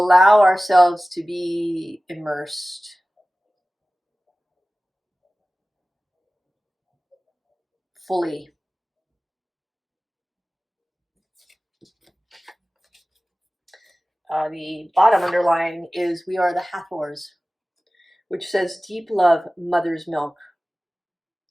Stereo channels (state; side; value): normal; both; correlation 0.97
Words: ourselves to be immersed fully. The bottom underlying is we are the Hathors, which says deep love, mother's milk.